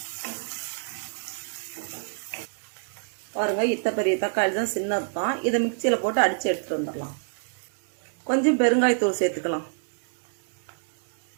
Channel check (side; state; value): left; silent; digital silence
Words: பாருங்க, இத்த பெரிய தக்காளி தான், சின்னது தான். இதை மிக்சியில் போட்டு அடித்து எடுத்துட்டு வந்துடலாம். கொஞ்சம் பெருங்காயத்தூள் சேர்த்துக்கலாம்.